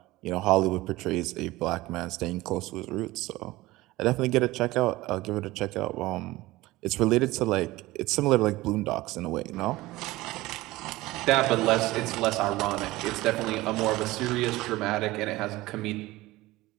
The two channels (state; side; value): quieter; left; 18.9 dB